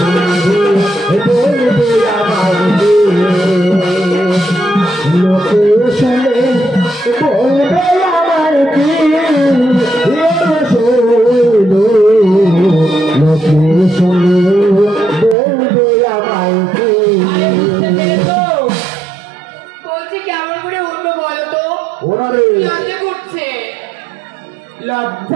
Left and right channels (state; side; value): drops out; left; at 15.4 s